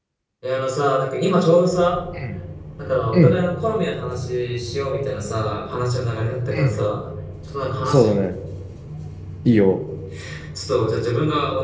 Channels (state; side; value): identical; both; correlation 1.00